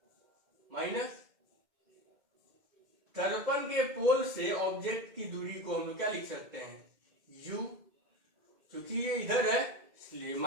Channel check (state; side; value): late; left; 2.1 ms